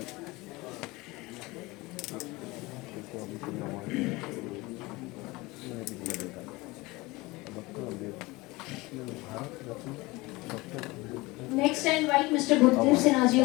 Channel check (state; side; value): quieter; right; 22.2 dB